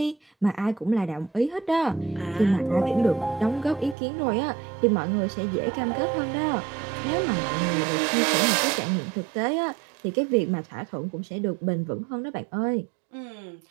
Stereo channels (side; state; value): left; drops out; at 4.0 s